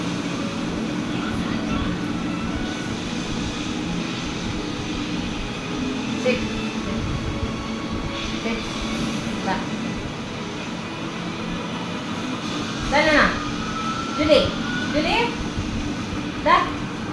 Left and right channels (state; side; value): identical; both; correlation 1.00